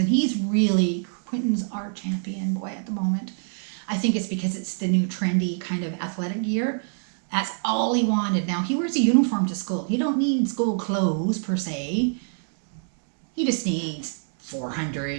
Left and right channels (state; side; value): silent; left; digital silence